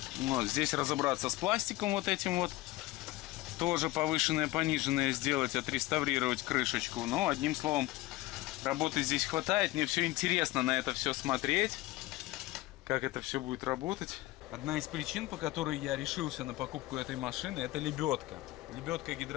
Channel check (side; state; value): right; quieter; 18.3 dB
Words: Вот, здесь разобраться с пластиком вот этим вот. Тоже повышенное, пониженное сделать, отреставрировать крышечку. Но, одним словом, работы здесь хватает. Мне все интересно на это все смотреть, как это все будет работать. Одна из причин, по которой я решился на покупку этой машины, это лебедка. Лебедка